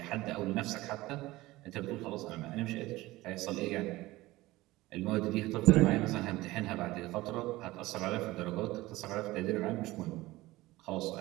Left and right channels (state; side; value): quieter; left; 18.7 dB